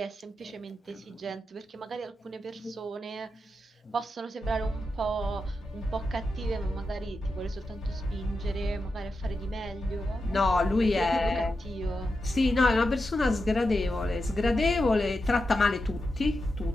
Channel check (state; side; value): normal; both; correlation 0.88